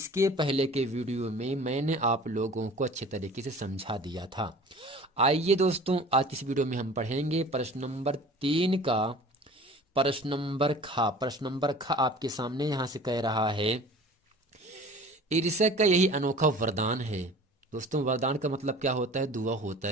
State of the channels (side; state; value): both; normal; correlation 0.43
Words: पहले के वीडियो में मैंने आप लोगों को अच्छे तरीके से समझा दिया था। आइए दोस्तों, आज इस वीडियो में हम पढ़ेंगे प्रश्न नंबर 3 का प्रश्न नंबर खा। प्रश्न नंबर खा आपके सामने यहाँ से कह रहा है, ईर्ष्या का यही अनोखा वरदान है। दोस्तों, वरदान का मतलब क्या होता है? दुआ होता